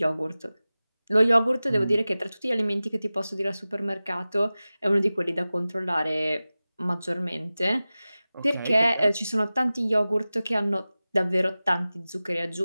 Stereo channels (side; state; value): both; inverted; correlation -0.97